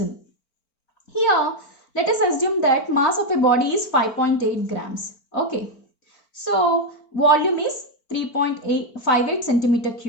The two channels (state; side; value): late; right; 4.4 ms